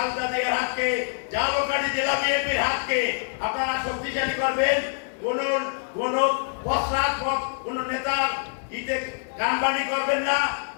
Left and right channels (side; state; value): right; silent; digital silence